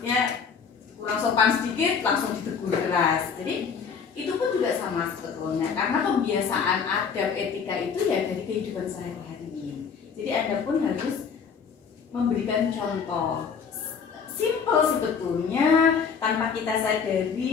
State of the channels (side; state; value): right; quieter; 6.2 dB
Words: sopan sedikit langsung ditegur keras. Jadi itu pun juga sama sebetulnya karena kebiasaan adab etika itu ya dari kehidupan sehari-hari. Jadi Anda pun harus memberikan contoh simple sebetulnya tanpa kita